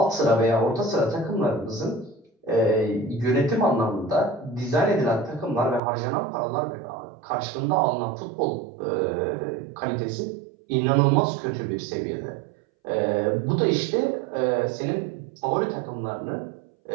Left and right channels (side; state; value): left; drops out; at 5.8 s